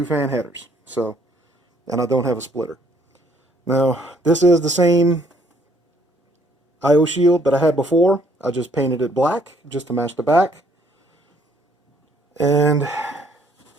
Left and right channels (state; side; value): normal; both; correlation 0.64